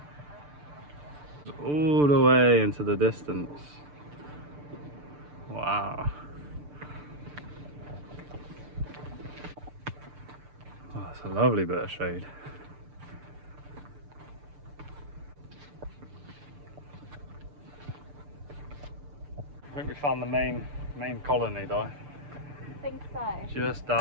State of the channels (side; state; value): left; late; 6.8 ms